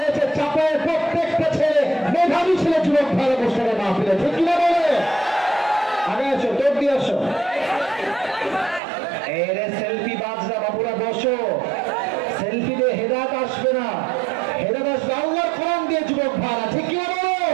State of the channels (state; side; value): drops out; left; at 8.8 s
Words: চাপায়ের প্রত্যেকটা ছেলে মেধাবী ছেলে। যুবক ভালো বসে মাহফিলে, ঠিক কিনা বলে? আগে আসো, তোর দিয়ে আসো। এরে সেলফি বাজরা বাবুরা বসো, সেলফি দিয়ে হেদায়েত আসবে না, হেদায়েত আসবে আল্লাহর কোরআন দিয়ে। যুবক ভাড়া, ঠিক কিনা বলো?